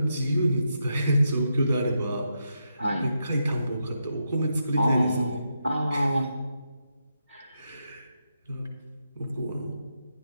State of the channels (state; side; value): inverted; both; correlation -0.84